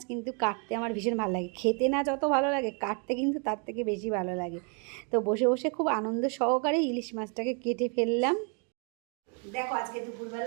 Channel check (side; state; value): left; quieter; 36.8 dB